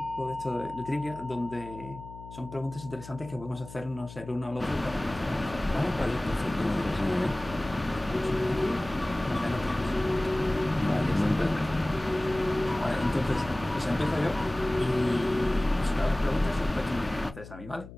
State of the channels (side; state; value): left; noise; hum, 15 dB below the sound